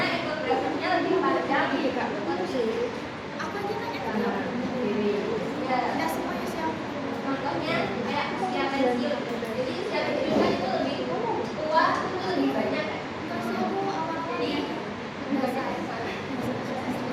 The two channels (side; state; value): both; identical; correlation 1.00